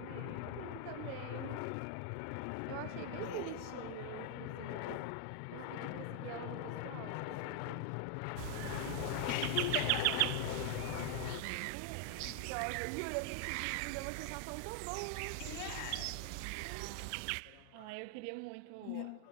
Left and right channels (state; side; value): different; both; correlation 0.00